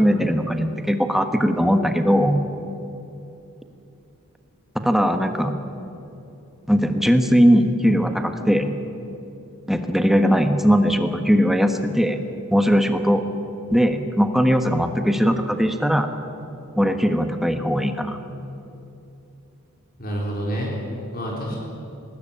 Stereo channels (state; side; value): normal; both; correlation 0.91